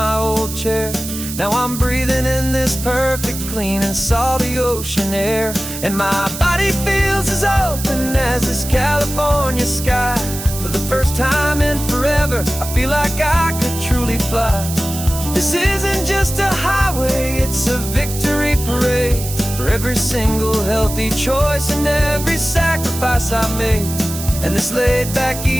old chair. Now I'm breathing in this perfect, clean and salty ocean air. And my body feels as open as this California sky. For the first time in forever, I feel like I could truly fly. This isn't just a highway, it's a victory parade. For every single healthy choice and every sacrifice I made. And this laid back,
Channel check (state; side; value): noise; right; hiss, 9 dB below the sound